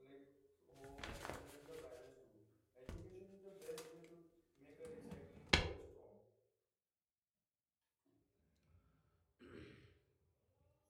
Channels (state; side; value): identical; both; correlation 1.00